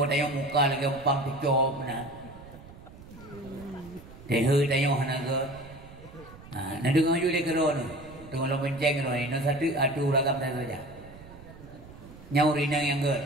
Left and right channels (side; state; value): right; noise; rumble, 18 dB below the sound